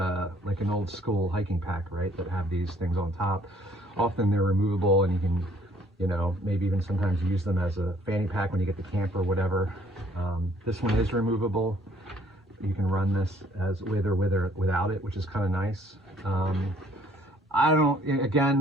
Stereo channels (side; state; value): both; normal; correlation 0.61